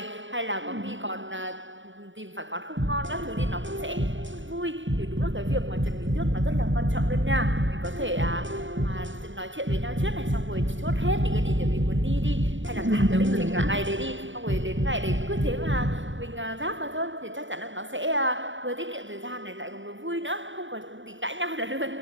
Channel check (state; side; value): late; left; 0.55 ms